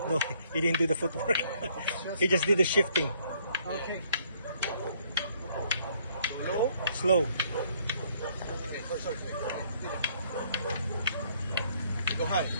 No, he didn't do the footwork. He just did the shifting. Okay. Low. Slow. Okay, sorry. Go high.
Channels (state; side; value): inverted; both; correlation -0.65